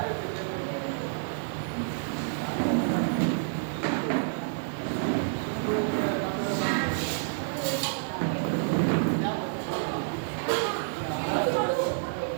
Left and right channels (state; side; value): silent; left; 59 dB below the other